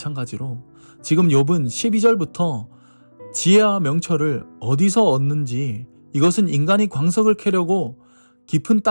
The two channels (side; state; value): both; inverted; correlation -1.00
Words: 지금 욥은 12절부터 지혜와 명철을 어디서 얻는지, 이것은 인간이 광석을 캐려고 깊은